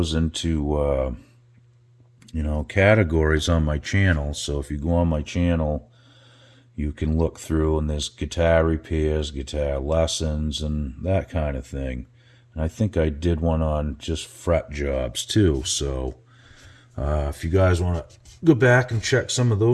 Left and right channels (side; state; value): both; identical; correlation 1.00